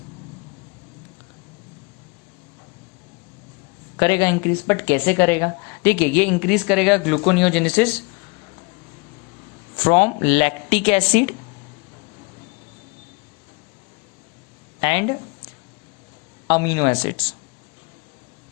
करेगा इंक्रीज, बट कैसे करेगा। देखिए ये इंक्रीज करेगा gluconeogenesis from lactic acid and amino acids.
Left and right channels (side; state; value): right; quieter; 29.6 dB